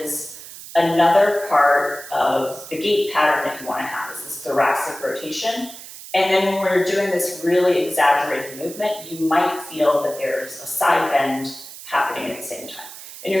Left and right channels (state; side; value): noise; right; hiss, 14 dB below the sound